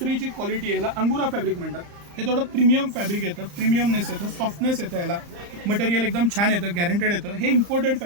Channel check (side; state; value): left; late; 35 ms